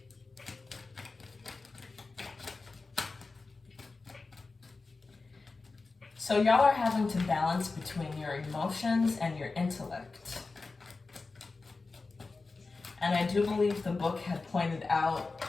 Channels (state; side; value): quieter; right; 3.9 dB